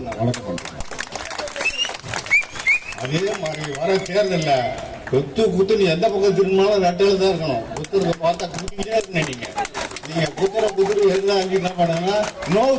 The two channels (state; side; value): identical; both; correlation 1.00